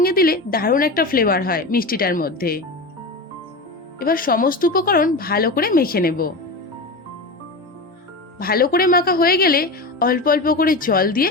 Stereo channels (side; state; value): right; quieter; 3.0 dB